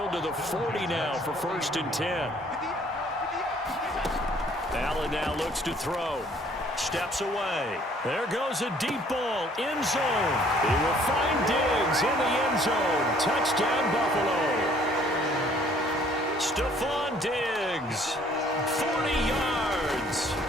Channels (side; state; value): both; normal; correlation 0.59